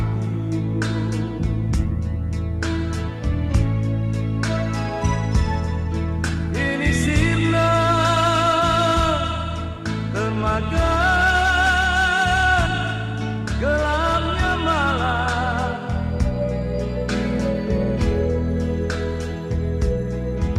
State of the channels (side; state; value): both; identical; correlation 1.00